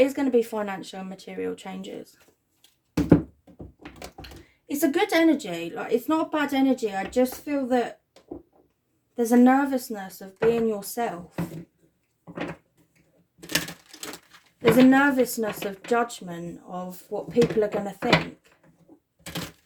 going to be financial and material changes. It's a good energy. Like, it's not a bad energy. I just feel that there's a nervousness of being yourself. There's a nervousness of judgment of what people are going to think.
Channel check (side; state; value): both; identical; correlation 1.00